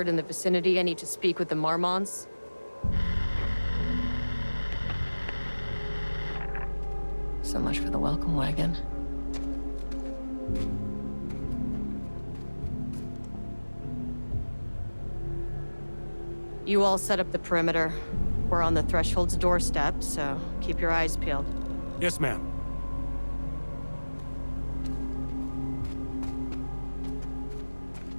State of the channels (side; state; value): both; inverted; correlation -1.00